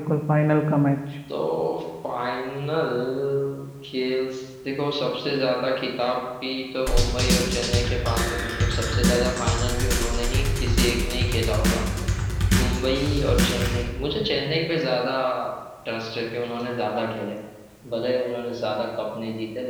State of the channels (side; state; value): both; identical; correlation 1.00